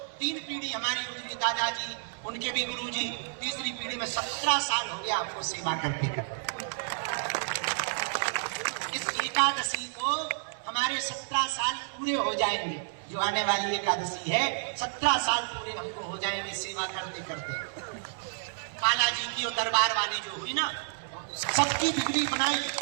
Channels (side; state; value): left; silent; 58 dB below the other